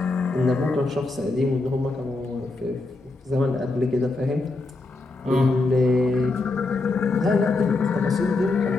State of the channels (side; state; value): right; quieter; 3.3 dB